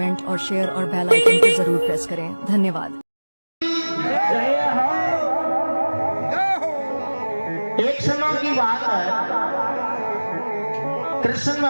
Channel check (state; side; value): inverted; both; correlation -1.00